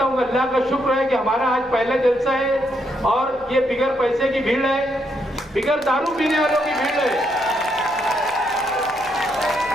हूँ अल्लाह का शुक्र है कि हमारा आज पहला जलसा है और ये बिगर पैसे की भीड़ है, बिगर दारू पीने वालों की भीड़ है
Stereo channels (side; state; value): right; noise; hum, 29 dB below the sound